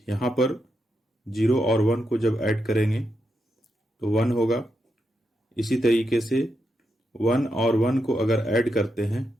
यहाँ पर 0 और 1 को जब ऐड करेंगे तो 1 होगा। इसी तरीके से 1 और 1 को अगर ऐड करते हैं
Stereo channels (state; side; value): normal; both; correlation 0.84